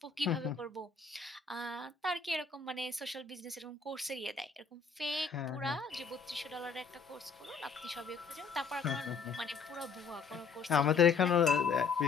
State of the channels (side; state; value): right; quieter; 5.4 dB